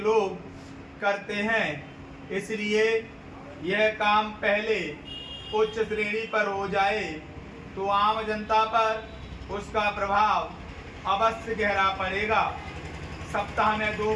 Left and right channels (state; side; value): identical; both; correlation 1.00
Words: करते हैं। इसलिए यह काम पहले उच्च श्रेणी पर हो जाए तो आम जनता पर उसका प्रभाव अवश्य गहरा पड़ेगा। सप्ताह में 2